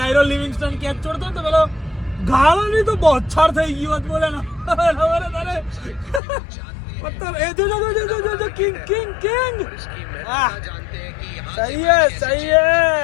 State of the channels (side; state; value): right; drops out; at 6.2 s